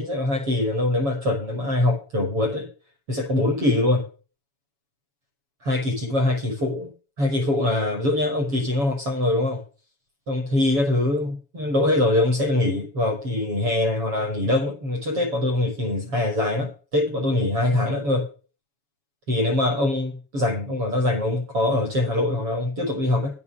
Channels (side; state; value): left; late; 7.2 ms